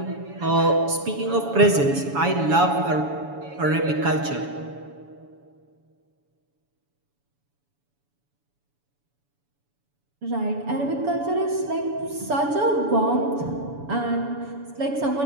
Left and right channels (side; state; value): left; late; 7.0 ms